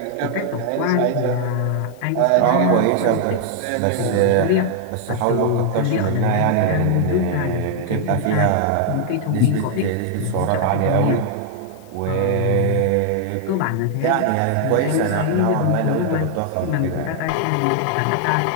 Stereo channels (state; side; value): different; both; correlation -0.01